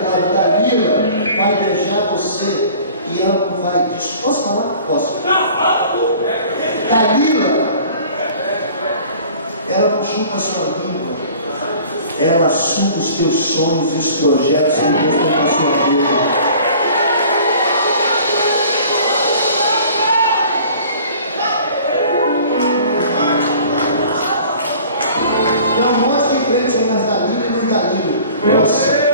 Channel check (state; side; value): inverted; both; correlation -0.48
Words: casa, Dalila vai deixar você e ela não vai. Posso falar? Posso. Dalila, ela não chupa a sua língua, ela suga os teus sonhos e os projetos que Deus tem na sua vida. Nossa,